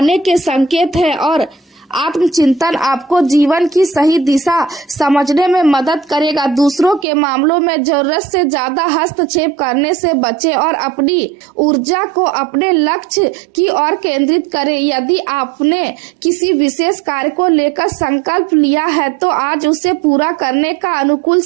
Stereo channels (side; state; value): left; drops out; at 7.1 s